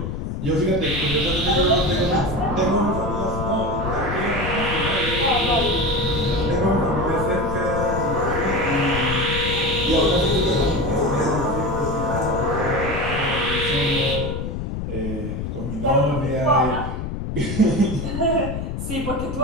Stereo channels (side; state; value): left; noise; rumble, 5 dB below the sound